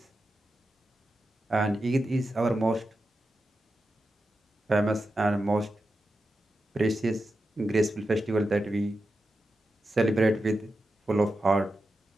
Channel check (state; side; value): normal; both; correlation 0.90